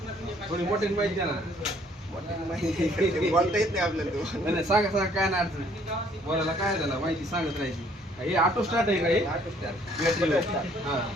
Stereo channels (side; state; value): both; normal; correlation 0.62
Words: थोडी मोठी माहिती द्या ना. माहिती बोलता येत नाही आपल्याला तो. नाही नाही, सांगा सांगा, काय नाही अडचण. बोलायला काय झालं, माहिती सांगत राहायची. हे ऑटो स्टार्ट आहे का हे? ऑटो स्टार्ट बॅटरीवर. हां